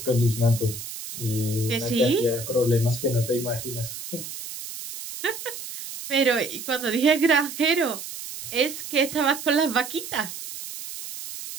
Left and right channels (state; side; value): noise; right; hiss, 10 dB below the sound